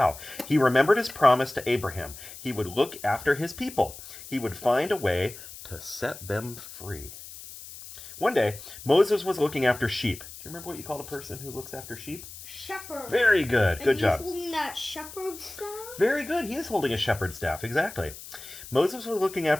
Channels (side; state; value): left; noise; hiss, 14 dB below the sound